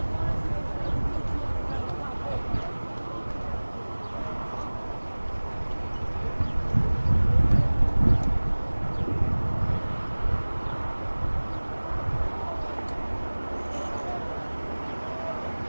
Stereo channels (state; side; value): inverted; both; correlation -1.00